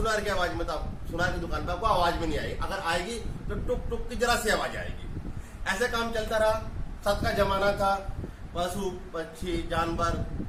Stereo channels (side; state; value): both; identical; correlation 1.00